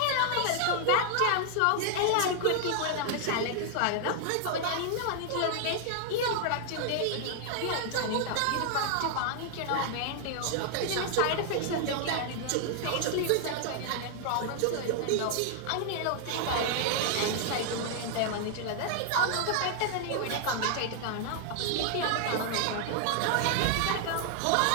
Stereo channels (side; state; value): both; different; correlation 0.00